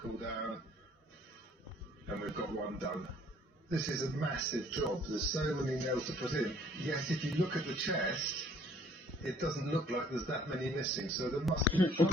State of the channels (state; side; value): normal; both; correlation 0.46